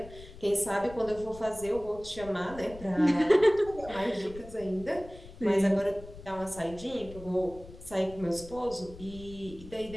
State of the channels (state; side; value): noise; left; rumble, 17 dB below the sound